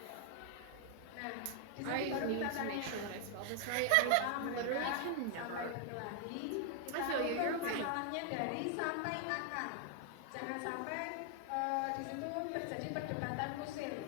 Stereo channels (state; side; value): different; both; correlation 0.00